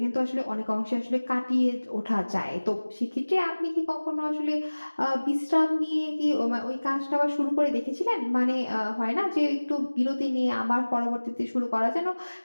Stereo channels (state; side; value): inverted; both; correlation -1.00